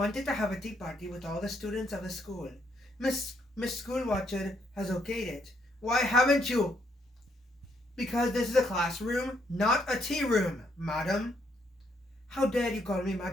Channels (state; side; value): normal; both; correlation 0.73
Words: to have a tea party with all the students of the school. Miss Schoolwatcher has okayed it. Why haven't you? Because this is a classroom, not a tea room, madam. How dare you call me